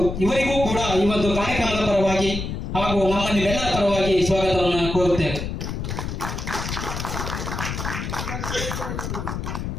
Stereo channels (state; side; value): noise; left; rumble, 5 dB below the sound